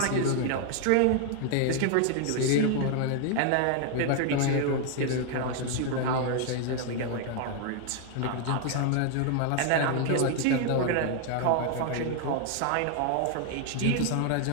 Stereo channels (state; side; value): different; both; correlation 0.00